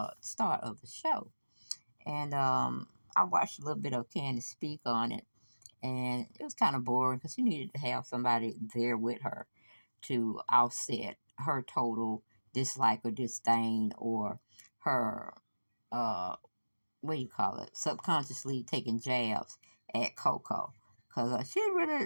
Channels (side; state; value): both; inverted; correlation -1.00